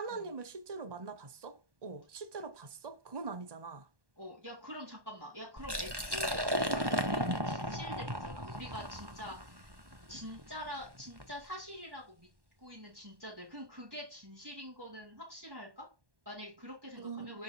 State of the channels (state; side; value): late; left; 1.1 ms